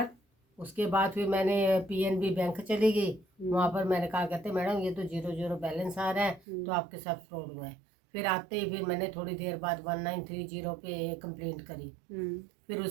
बाद फिर मैंने पीएनबी बैंक चली गई। वहाँ पर मैंने कहा, कहते मैडम ये तो 0 बैलेंस आ रहा है, तो आपके साथ फ्रॉड हुआ है। फिर आते ही फिर मैंने थोड़ी देर बाद 1930 पे कंप्लेंट करी। फिर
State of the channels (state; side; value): drops out; left; at 6.4 s